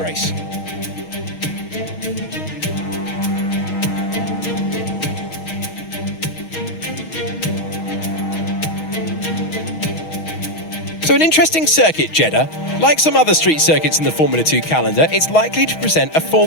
So an interesting circuit, Jeddah. Like some other street circuits in the Formula 2 calendar, it's likely to present a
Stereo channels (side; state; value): right; late; 6.3 ms